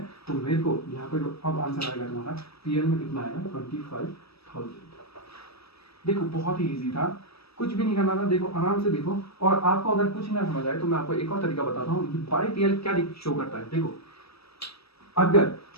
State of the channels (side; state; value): right; late; 0.77 ms